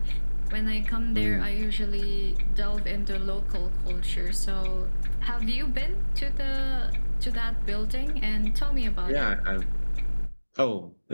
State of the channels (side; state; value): both; inverted; correlation -1.00